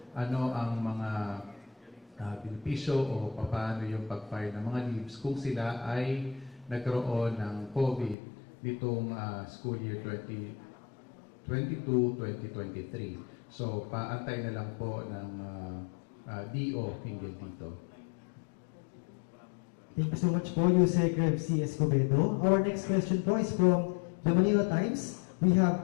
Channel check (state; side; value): drops out; right; at 8.2 s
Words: Ano ang mga benepisyo o paano yung pag-file ng mga leaves kung sila ay nagkaroon ng COVID nitong school year 2022-2023. So, paantay na lang po ng DO hinggil dito. Thank you so much po, Yusek Rev C. Escobedo. Our next question po is from the Manila Times. We have